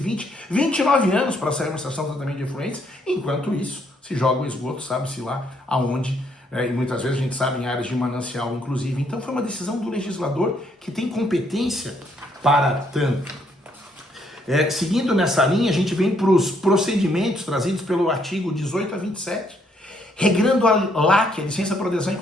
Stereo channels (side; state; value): both; normal; correlation 0.71